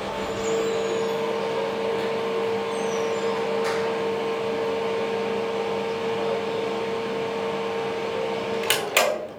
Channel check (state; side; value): identical; both; correlation 1.00